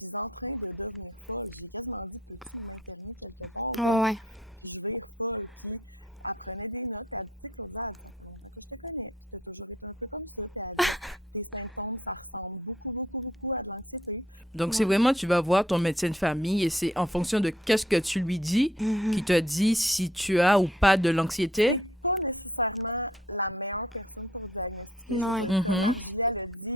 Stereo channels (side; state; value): both; normal; correlation 0.63